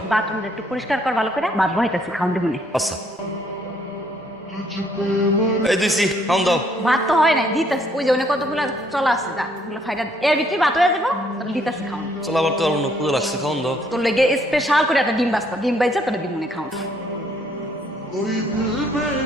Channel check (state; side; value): normal; both; correlation 0.66